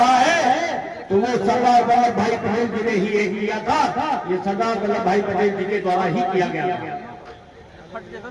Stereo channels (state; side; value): identical; both; correlation 1.00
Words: है, तो वो सरदार वल्लभ भाई पटेल जी ने ही ये किया था। ये सरदार वल्लभ भाई पटेल जी के द्वारा ही किया गया था।